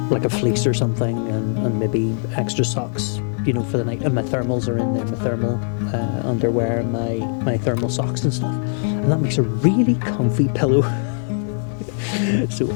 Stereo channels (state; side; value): silent; right; digital silence